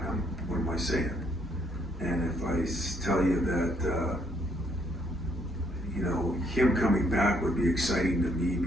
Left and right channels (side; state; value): both; normal; correlation 0.69